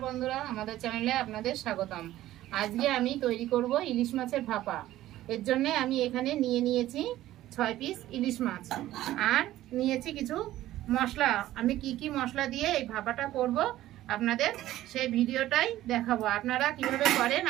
বন্ধুরা, আমাদের চ্যানেলে আপনাদের স্বাগতম। আজকে আমি তৈরি করব ইলিশ মাছের ভাপা। এর জন্য আমি এখানে নিয়েছি 6 পিস ইলিশ মাছ আর নিয়েছি কিছু মশলা। আমি কি মশলা দিয়ে এই ভাপাটা করব আপনাদের সেই ভিডিওটাই দেখাবো। আপনারা কিভাবে করেন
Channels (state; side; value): quieter; left; 14.5 dB